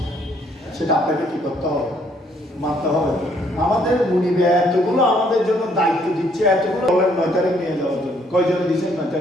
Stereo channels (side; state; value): both; normal; correlation 0.67